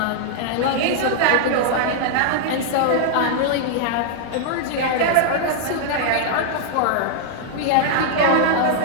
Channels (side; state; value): both; different; correlation -0.01